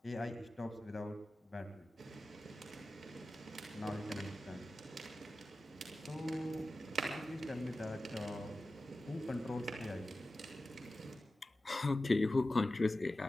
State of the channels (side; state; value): both; normal; correlation 0.94